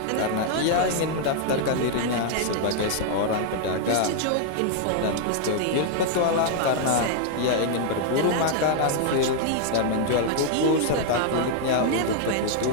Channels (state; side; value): different; both; correlation 0.00